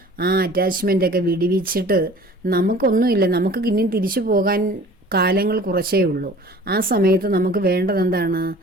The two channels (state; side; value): normal; both; correlation 0.46